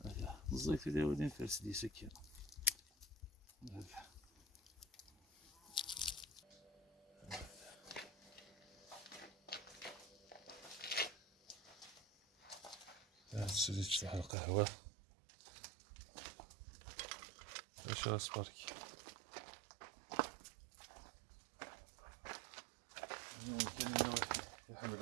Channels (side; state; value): left; drops out; at 14.3 s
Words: الزيت اللي ولين فارس دي سكين تسدي تشرح القهوة. اش اصبرك ممكن يا